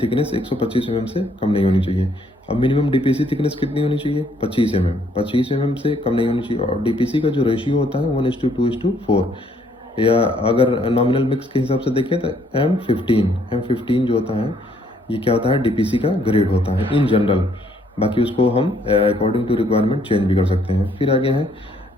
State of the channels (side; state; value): both; normal; correlation 0.67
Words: 125 mm से कम नहीं होनी चाहिए। अब मिनिमम DPC थिकनेस कितनी होनी चाहिए, 25 mm। 25 mm से कम नहीं होनी चाहिए। और DPC का जो रेशियो होता है 1:2:4, या अगर नॉमिनल मिक्स के हिसाब से देखें तो M15 जो होता है ये क्या होता है, DPC का ग्रेड होता है इन जनरल। बाकी उसको हम अकॉर्डिंग टू रिक्वायरमेंट चेंज भी कर सकते हैं। फिर आगे है